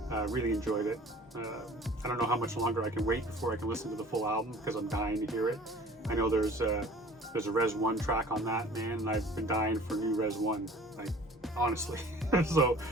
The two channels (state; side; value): normal; both; correlation 0.47